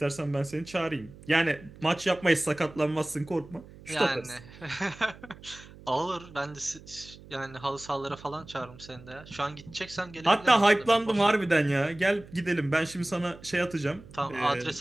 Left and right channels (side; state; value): right; noise; hum, 20 dB below the sound